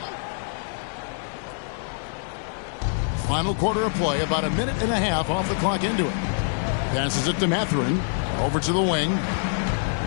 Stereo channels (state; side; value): silent; right; digital silence